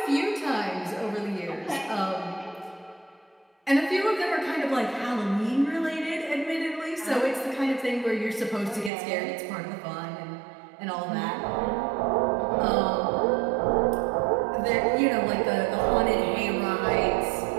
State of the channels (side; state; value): left; drops out; at 8.9 s